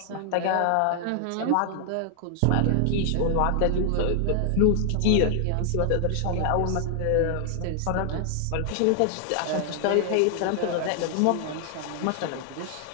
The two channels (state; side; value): different; both; correlation 0.00